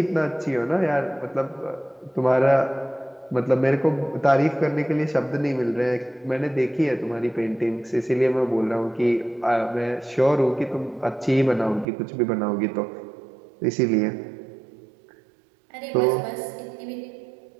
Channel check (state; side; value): drops out; left; at 11.9 s